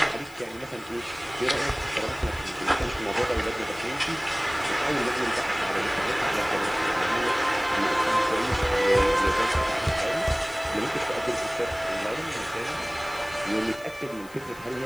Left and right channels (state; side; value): noise; left; hiss, 22 dB below the sound